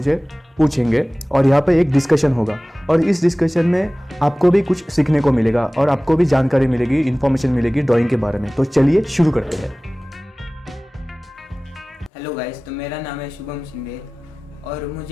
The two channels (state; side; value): normal; both; correlation 0.98